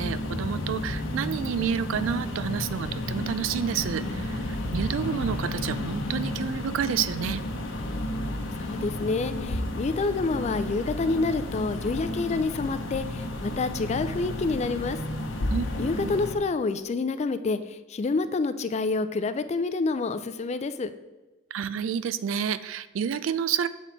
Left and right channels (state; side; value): normal; both; correlation 0.44